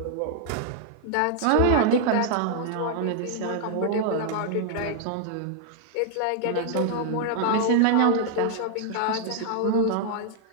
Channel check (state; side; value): different; both; correlation 0.00